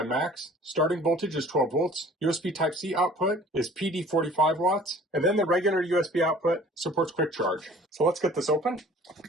max. Starting voltage is 12 volts. USB Type-C output is PD 45 watts. And then the regular USB output supports quick charge. So let's get this open.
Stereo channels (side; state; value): both; normal; correlation 0.50